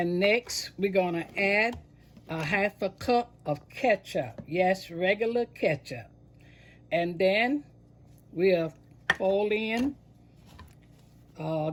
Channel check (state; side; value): identical; both; correlation 1.00